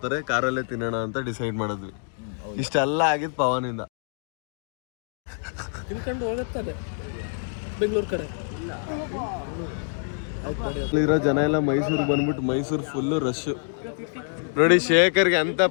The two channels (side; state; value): right; silent; digital silence